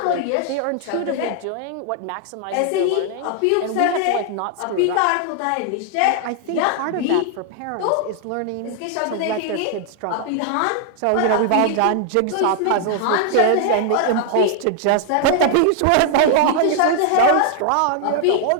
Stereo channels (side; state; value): both; different; correlation 0.00